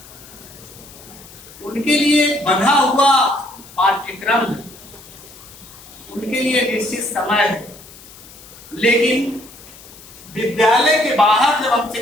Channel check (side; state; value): left; noise; hiss, 20 dB below the sound